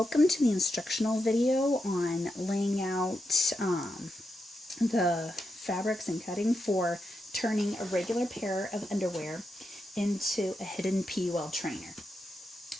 to the instructional video on laying out the fabrics and cutting for turning a regular pair of underwear into a hidden PUL trainer.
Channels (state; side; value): normal; both; correlation 0.85